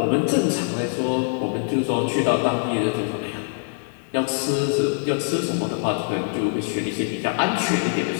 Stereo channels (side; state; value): right; silent; digital silence